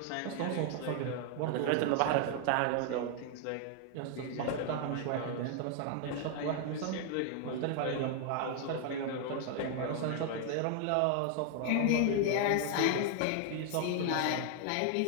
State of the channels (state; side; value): different; both; correlation 0.00